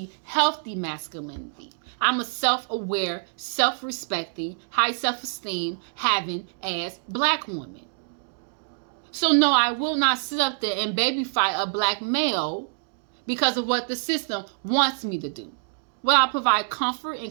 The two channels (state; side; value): silent; left; digital silence